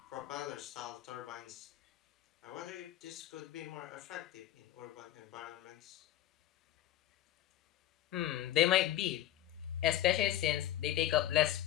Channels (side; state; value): right; quieter; 12.8 dB